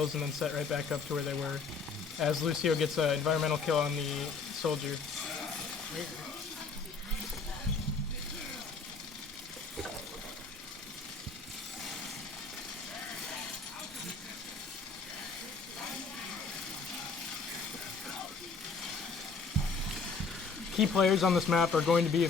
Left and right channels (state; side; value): quieter; right; 4.6 dB